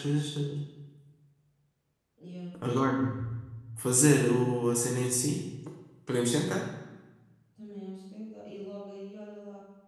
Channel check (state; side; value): identical; both; correlation 1.00